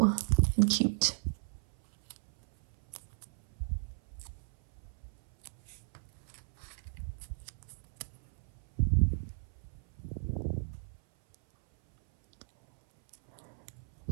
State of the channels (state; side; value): silent; left; 55 dB below the other